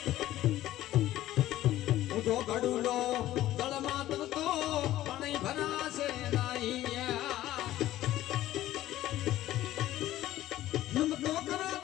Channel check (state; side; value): quieter; right; 14.4 dB